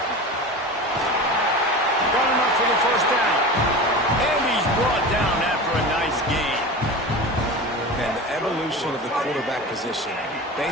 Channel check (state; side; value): normal; both; correlation 0.31